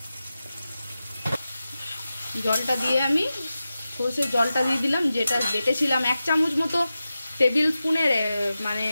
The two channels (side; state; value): both; inverted; correlation -0.93